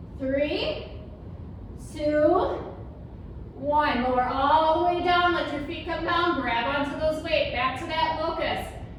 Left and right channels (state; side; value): identical; both; correlation 1.00